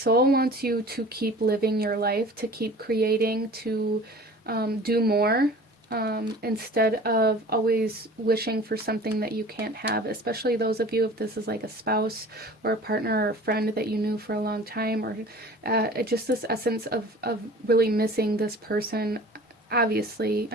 wants you to keep living your life, to keep creating, to do more, instead of always wishing for something that you can't have, especially those of you, if this is like a spouse or a partner or a friend that you knew for a long time, or just this essence of really missing this person. Obviously,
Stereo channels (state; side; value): normal; both; correlation 0.43